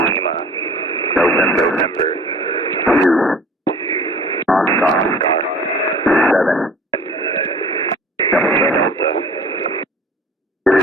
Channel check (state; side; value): normal; both; correlation 0.45